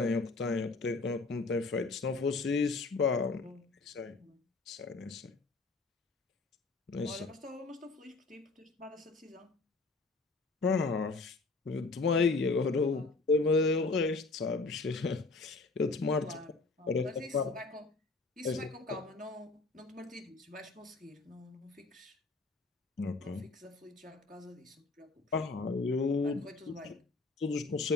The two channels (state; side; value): quieter; right; 3.7 dB